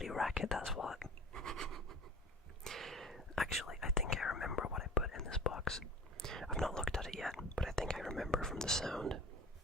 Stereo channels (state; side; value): normal; both; correlation 0.41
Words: racket, that's what. Actually, I think I remember what I put in this box. I've not looked at it yet, but I think I remember from the sound.